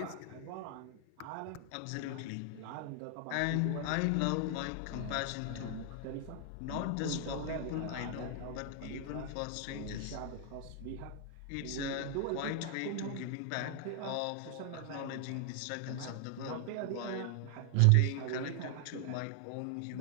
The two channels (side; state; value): both; different; correlation 0.00